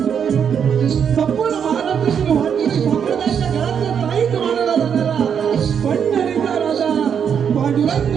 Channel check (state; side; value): quieter; left; 7.6 dB